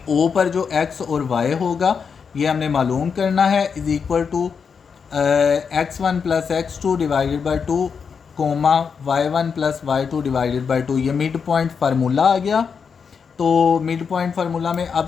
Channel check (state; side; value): quieter; right; 6.1 dB